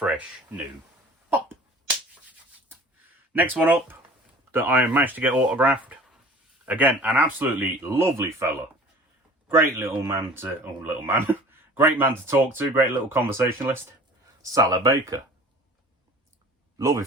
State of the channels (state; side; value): normal; both; correlation 0.45